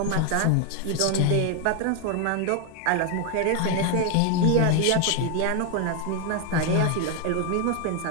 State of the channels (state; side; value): different; both; correlation 0.01